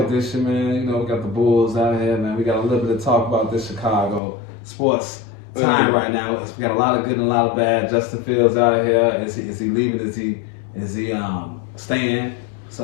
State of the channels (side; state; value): right; drops out; at 4.2 s